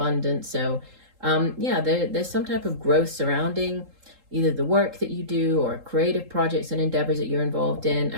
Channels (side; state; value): left; late; 3.8 ms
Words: So yeah, there's some type of growth surrounding either the work that you do or creative projects and endeavors that you're involved in.